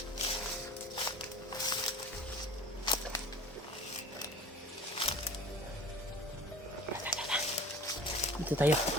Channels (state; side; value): normal; both; correlation 0.41